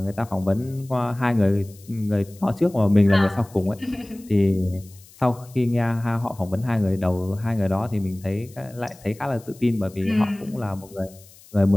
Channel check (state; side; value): noise; left; hiss, 24 dB below the sound